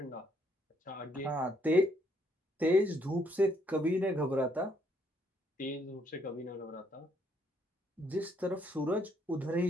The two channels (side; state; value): both; normal; correlation 0.70